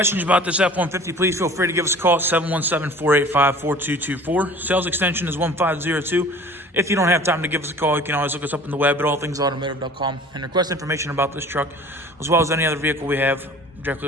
about this F-150, please feel free to give us a call at 717-485-4224. Sales extension is 1502. If you don't have time to give us a call, you can always look us up on the web at allthingsautomotive.com and request information about this truck, as well as any other vehicle we have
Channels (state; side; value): normal; both; correlation 0.45